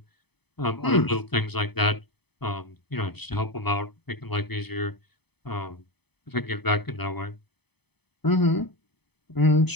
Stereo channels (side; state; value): right; late; 0.98 ms